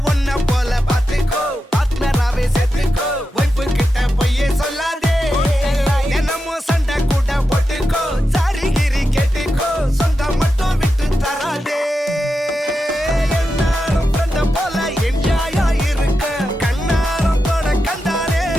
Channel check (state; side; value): normal; both; correlation 0.89